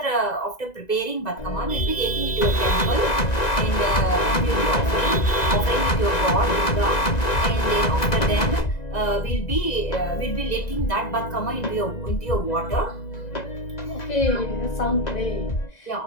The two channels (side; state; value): right; late; 2.0 ms